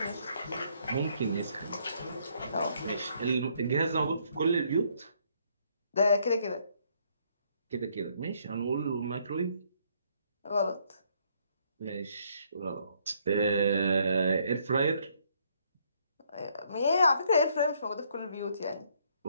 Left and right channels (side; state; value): both; inverted; correlation -0.68